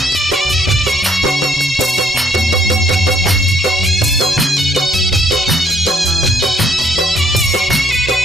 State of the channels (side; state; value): both; normal; correlation 0.66